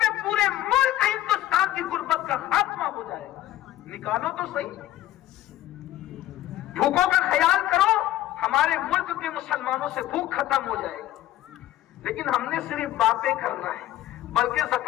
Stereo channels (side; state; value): right; quieter; 13.9 dB